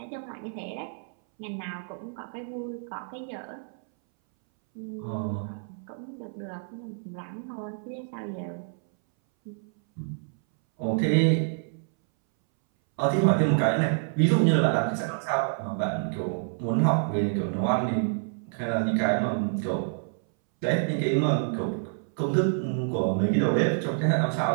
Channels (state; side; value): silent; left; 60 dB below the other